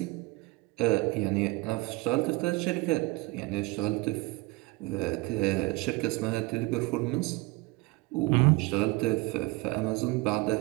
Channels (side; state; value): left; quieter; 23.5 dB